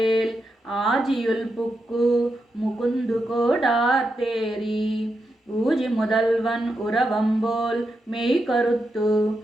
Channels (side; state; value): both; normal; correlation 0.86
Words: ఆజియుల్ పుక్కు ముకుందు కోడార్తేరి ఊజి முதல்வன் உறவம்போல் மெய் கருத்து